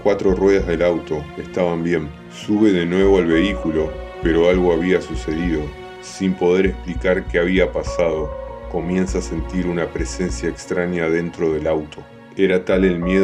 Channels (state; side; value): identical; both; correlation 1.00